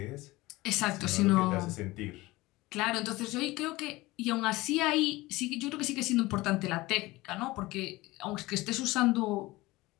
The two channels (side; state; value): right; quieter; 20.2 dB